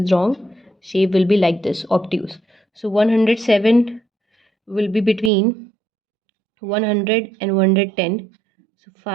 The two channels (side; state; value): left; drops out; at 5.3 s